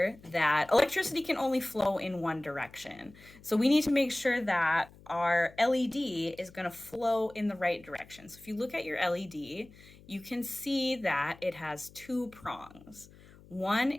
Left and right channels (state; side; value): noise; left; hum, 23 dB below the sound